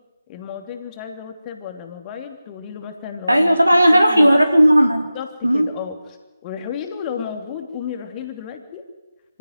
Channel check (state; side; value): inverted; both; correlation -0.94